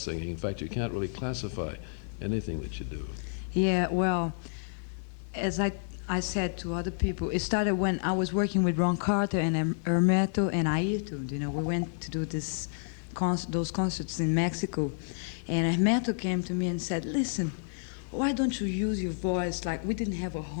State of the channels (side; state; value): right; silent; digital silence